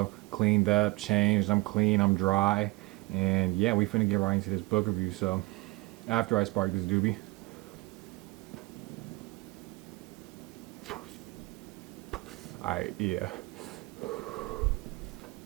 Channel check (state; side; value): quieter; left; 22.9 dB